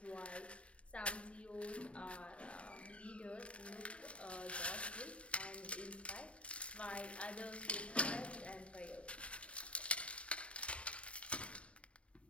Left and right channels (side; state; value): right; late; 0.061 ms